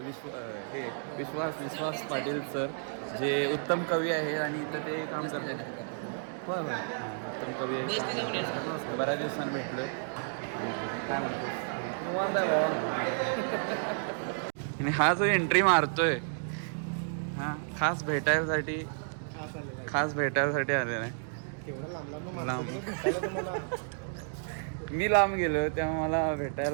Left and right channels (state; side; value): silent; left; digital silence